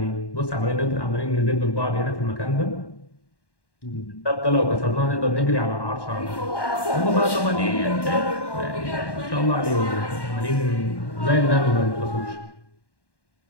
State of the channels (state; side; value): late; right; 1.1 ms